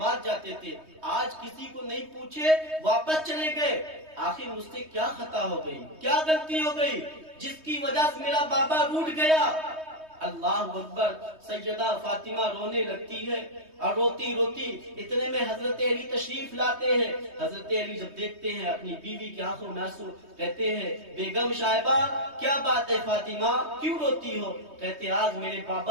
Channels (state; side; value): late; left; 3.2 ms